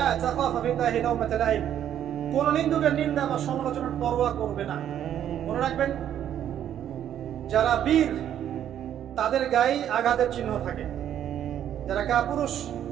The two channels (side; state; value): left; quieter; 10.3 dB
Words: তাখাফা বিল্লাহি লাওমাতা লাইম, কোন নিন্দুকের নিন্দা বা সমালোচনার পরোয়া করবে না। মনে রাখবেন, যারা বীর তাদের গায়ে আঘাতের চিহ্ন থাকে, যারা কাপুরুষ